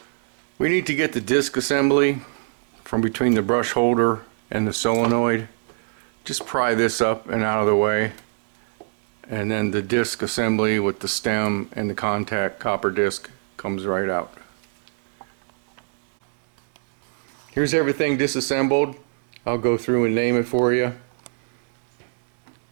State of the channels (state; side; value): silent; left; digital silence